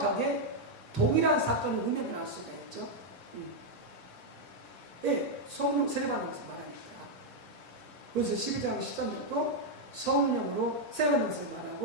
동일한 사건을 의미를 알 수가 있죠. 예, 성령 세례 받는 것을 말하니까. 그래서 12장 13절도 성령으로 세례 받는 것을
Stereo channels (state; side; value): late; right; 1.7 ms